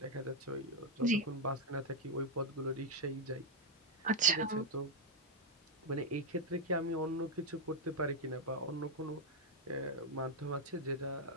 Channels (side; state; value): both; normal; correlation 0.01